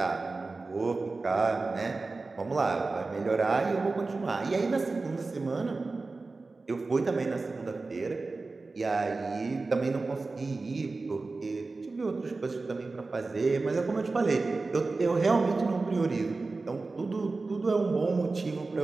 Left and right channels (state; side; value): quieter; left; 3.7 dB